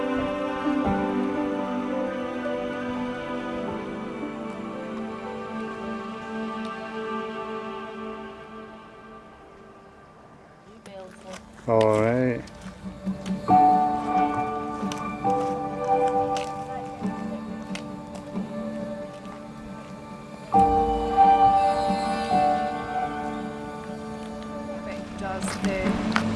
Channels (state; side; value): identical; both; correlation 1.00